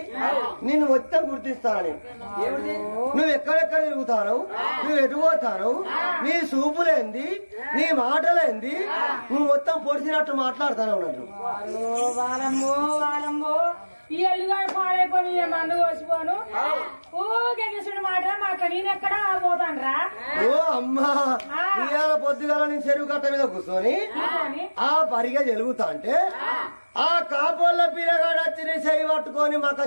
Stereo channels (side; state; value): both; inverted; correlation -1.00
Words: నిన్ను మొత్తం గుర్తిస్తాను. నువ్వు ఎక్కడెక్కడ తిరుగుతాను, నువ్వు ఎటు పోతాను, నీ చూపులేంది, నీ మాటలేంది, నువ్వు మొత్తం పొడిచినట్టు మాట్లాడుతాను అన్నట్టు. వాలమ్మో వాలమ్మో ఈ ఎల్లుగాడు పాడైపోయి మందు కోసిపోను ఊగేసుడు మాట మాట నేనెక్కడా పోతాను రా. ఓ అమ్మా, ఇవాళ పొద్దుగాల నీ చెరువు కట్ట మీద కూర్చొని ఆ పరిగా జరుగుతా అంటే ఆ కాపోళ్ళ పిల్లగాడు వచ్చి నీ చెయ్యి పట్టుకొని మక్క